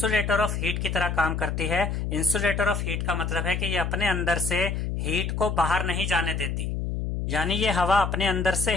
ऑफ हीट की तरह काम करती है। इंसुलेटर ऑफ हीट का मतलब है कि ये अपने अंदर से हीट को बाहर नहीं जाने देती। यानी ये हवा अपने अंदर से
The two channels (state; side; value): noise; left; hum, 2 dB below the sound